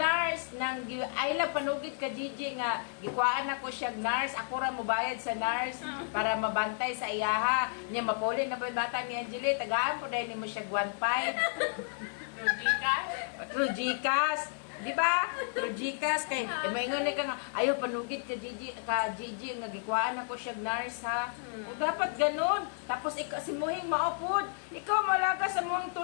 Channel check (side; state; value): right; silent; 56 dB below the other